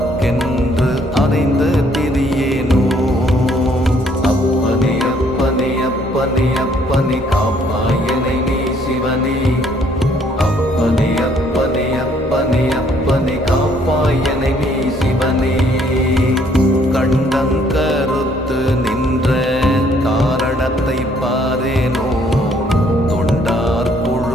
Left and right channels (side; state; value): both; normal; correlation 0.64